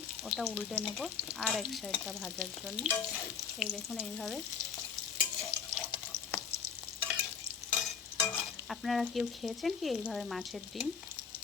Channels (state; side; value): quieter; right; 6.7 dB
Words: ওটা উল্টে নেব আর এক সাইডটা ভাজার জন্য। এই দেখুন এইভাবে। আপনারা কেউ খেয়েছেন কি এইভাবে মাছের ডিম?